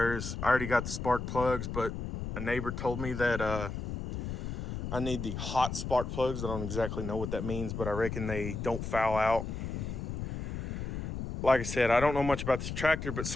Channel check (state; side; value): noise; left; rumble, 5 dB below the sound